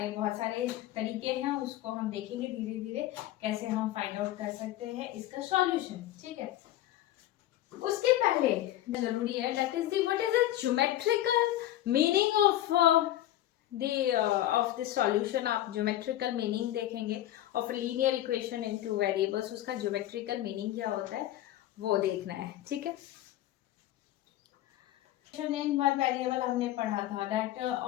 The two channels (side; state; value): right; quieter; 13.9 dB